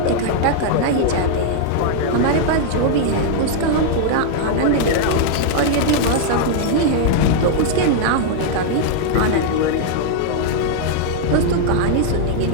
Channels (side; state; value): both; different; correlation -0.01